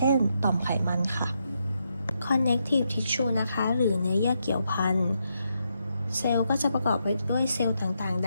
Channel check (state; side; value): inverted; both; correlation -0.81